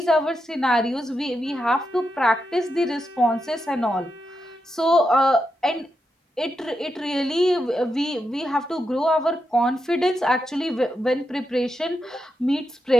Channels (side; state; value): both; normal; correlation 0.86